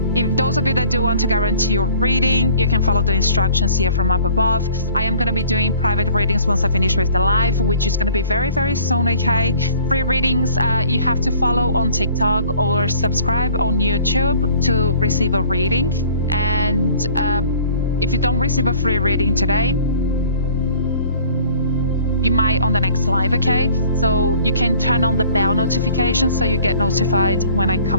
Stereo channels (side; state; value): both; inverted; correlation -0.52